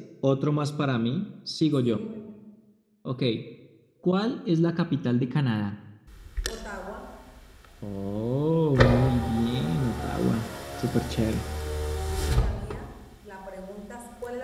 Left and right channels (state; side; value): identical; both; correlation 1.00